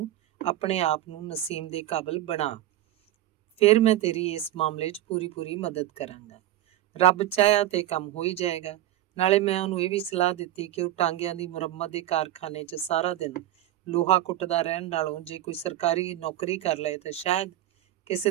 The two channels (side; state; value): left; quieter; 13.6 dB